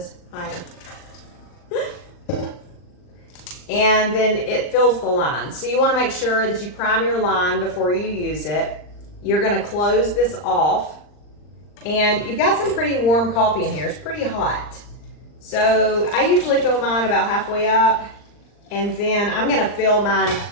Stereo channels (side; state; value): right; late; 39 ms